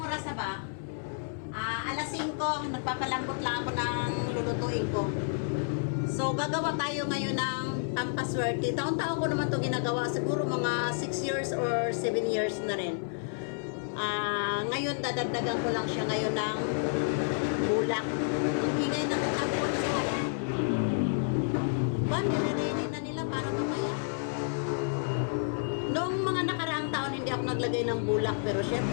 oras na ba? Alas 5, nagpapalambot lang ako ng lulutuin ko. So, gagawa tayo ngayon ng pampaswerte. Taon-taon ko naman ito ginagawa. Siguro mga 6 years or 7 years na rin. Ngayon, dadagdagan ko lang siya ngayon ng bulak. Ang ingay na nagkakul. So, nire-ready na nila para mamaya. Noong mga nakaraang taon, hindi ako naglagay ng bulak. Pero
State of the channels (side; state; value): right; silent; 58 dB below the other